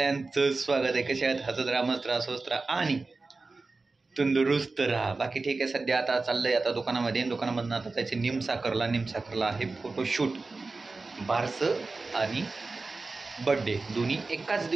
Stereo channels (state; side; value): quieter; left; 3.7 dB